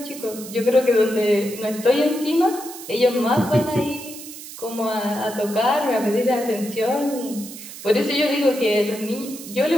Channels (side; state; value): right; noise; hiss, 13 dB below the sound